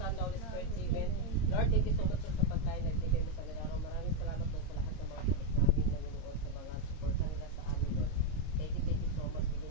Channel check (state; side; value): late; right; 26 ms